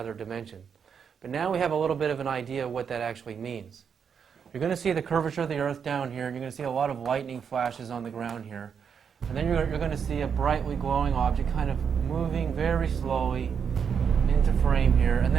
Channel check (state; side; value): quieter; left; 7.0 dB